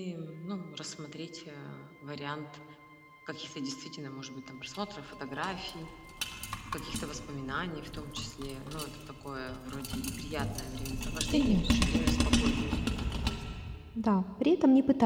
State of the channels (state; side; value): identical; both; correlation 1.00